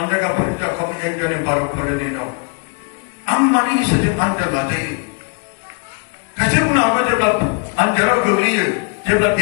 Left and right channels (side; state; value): right; quieter; 36.4 dB